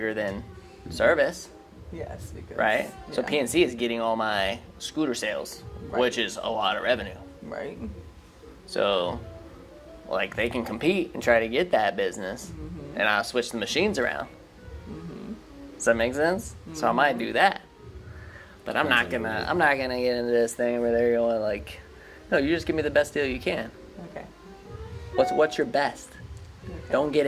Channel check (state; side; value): identical; both; correlation 1.00